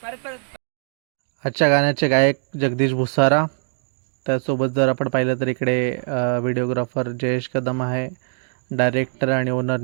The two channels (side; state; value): left; silent; digital silence